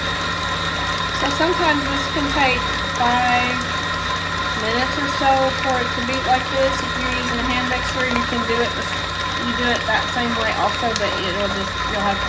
So sometimes this can take 5 minutes or so for it to beat like this. If you're using a hand mixer, you can do it. You do it that same way also, but you'll have to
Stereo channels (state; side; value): identical; both; correlation 1.00